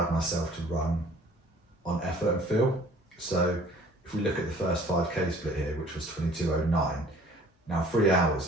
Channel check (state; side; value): normal; both; correlation 0.52